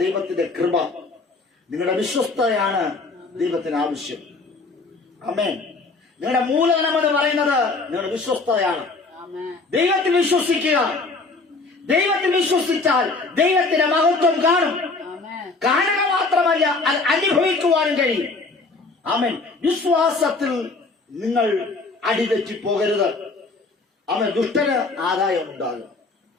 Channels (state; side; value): quieter; right; 3.7 dB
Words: ദൈവത്തിന്റെ കൃപ. നിങ്ങളുടെ വിശ്വസ്തയാണ് ദൈവത്തിന് ആവശ്യം. ആമേൻ. നിങ്ങളുടെ മൂലധനം എന്ന് പറയുന്നത് നിങ്ങളുടെ വിശ്വസ്തയാണ്. ദൈവത്തിൽ വിശ്വസിക്കുക. ദൈവത്തിൽ വിശ്വസിച്ചാൽ ദൈവത്തിന്റെ മഹത്വം കാണും. കാണുക മാത്രമല്ല, അത് അനുഭവിക്കുവാനും കഴിയും. ആമേൻ. വിശ്വാസത്തിൽ നിങ്ങൾ അടിതെറ്റി പോകരുത്. അവൻ ദുഷ്ടന് ആദായം ഉണ്ടാകും.